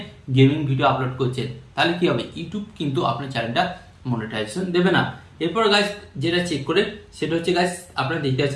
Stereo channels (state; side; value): identical; both; correlation 1.00